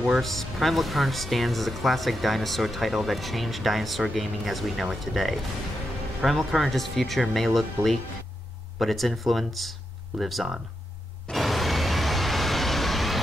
Primal Carnage stands as a classic dinosaur title that changed dinosaur gaming as we know it today. Primal Carnage's future may look bleak, but its influence lives on.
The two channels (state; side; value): normal; both; correlation 0.85